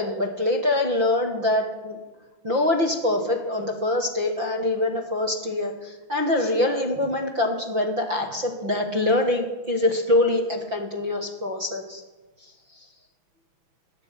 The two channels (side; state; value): left; late; 5.8 ms